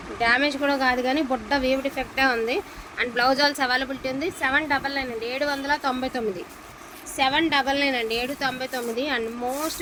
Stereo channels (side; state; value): both; identical; correlation 1.00